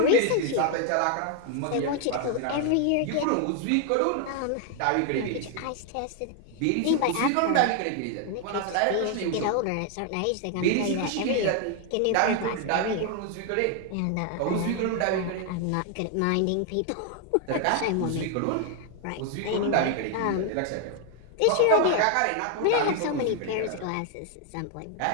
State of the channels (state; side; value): different; both; correlation 0.00